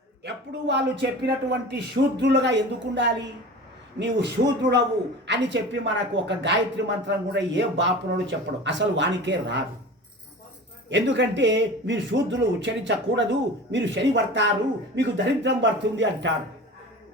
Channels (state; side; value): normal; both; correlation 0.35